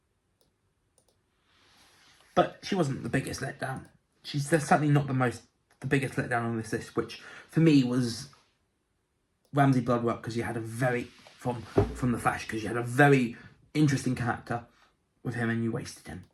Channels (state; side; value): identical; both; correlation 1.00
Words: But she wasn't the biggest letdown. She's certainly not the biggest letdown on this list, which for me was Ramsay Bloodwork, because you had a very, from The Flash, because you had a very interesting character with him and you wasted him.